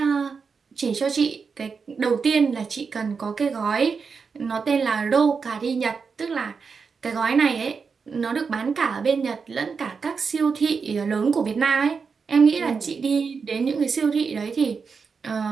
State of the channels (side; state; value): left; quieter; 5.4 dB